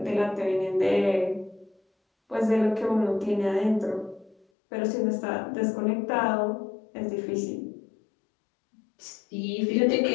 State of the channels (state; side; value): drops out; right; at 4.4 s